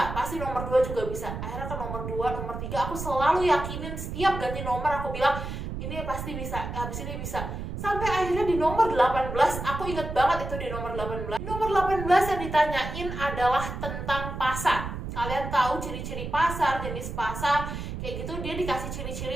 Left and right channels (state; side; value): noise; right; rumble, 6 dB below the sound